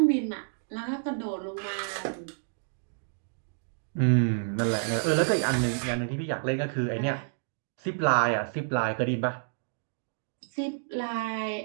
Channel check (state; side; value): silent; left; digital silence